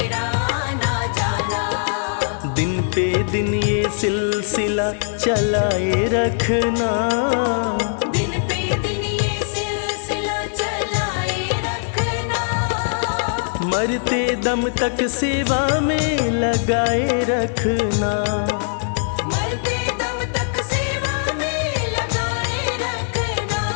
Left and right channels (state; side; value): silent; right; digital silence